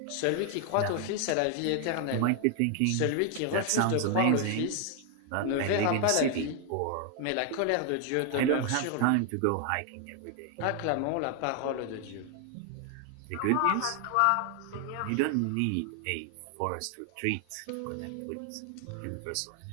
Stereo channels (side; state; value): both; different; correlation 0.00